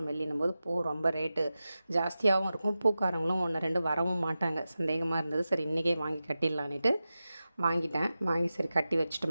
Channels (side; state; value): both; inverted; correlation -0.93